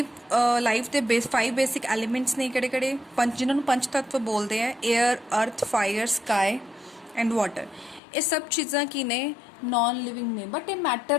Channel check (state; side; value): drops out; right; at 8.0 s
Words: life ਦੇ 5 basic elements ਨੇ ਕਿਹੜੇ ਪੰਜ ਜਿਨ੍ਹਾਂ ਨੂੰ ਪੰਜ ਤੱਤਵ ਬੋਲਦੇ ਆ 에ਅਰ ਅਰਥ ਫਾਇਰ ਸਕਾਈ ਐਂਡ ਵਾਟਰ। ਇਹ ਸਭ ਚੀਜ਼ਾਂ ਕੀ ਨੇ ਨॉन ਲਿਵਿੰਗ ਨੇ ਬਟ ਇਹ